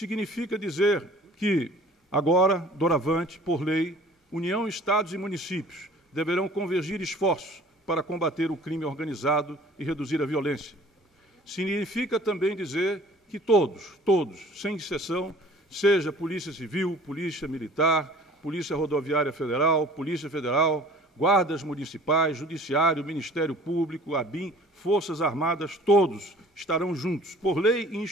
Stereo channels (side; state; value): both; normal; correlation 0.49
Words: dizer que, agora, doravante, por lei, União, Estados e municípios deverão convergir esforços para combater o crime organizado e reduzir a violência. Significa também dizer que todos, sem exceção, seja Polícia Civil, Polícia Militar, Polícia Rodoviária Federal, Polícia Federal, guardas municipais, Judiciário, Ministério Público, ABIN, Forças Armadas, todos estarão juntos, por lei e